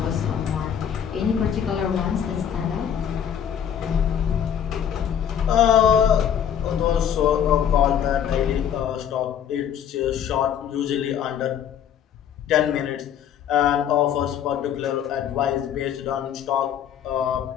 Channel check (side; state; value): right; quieter; 9.0 dB